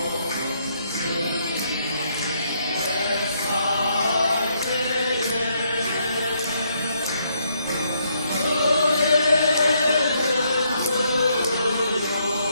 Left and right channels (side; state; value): both; inverted; correlation -0.73